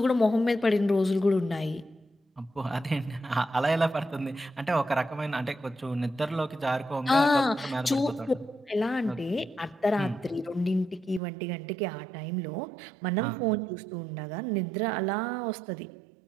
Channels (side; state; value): left; drops out; at 11.2 s